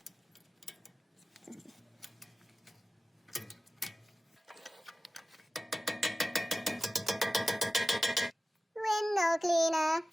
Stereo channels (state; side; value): normal; both; correlation 0.96